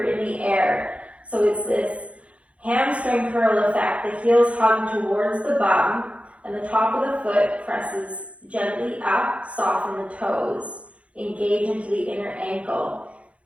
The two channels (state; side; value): late; left; 0.063 ms